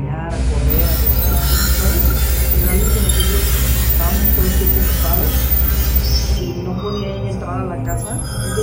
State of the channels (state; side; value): identical; both; correlation 1.00